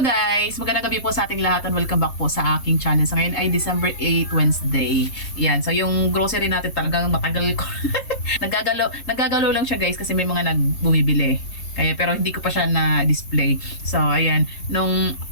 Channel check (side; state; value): right; late; 3.7 ms